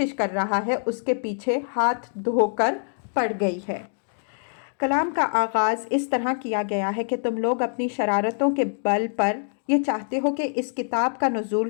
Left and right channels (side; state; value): right; silent; digital silence